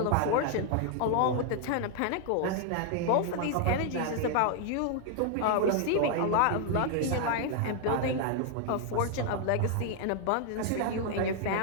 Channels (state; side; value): different; both; correlation 0.00